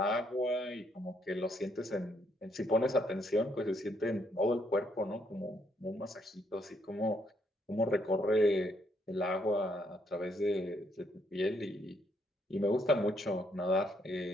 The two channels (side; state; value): both; normal; correlation 0.73